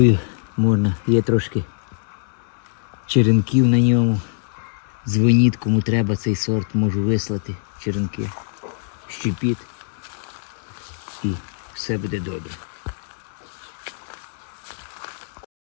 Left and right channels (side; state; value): right; silent; 64 dB below the other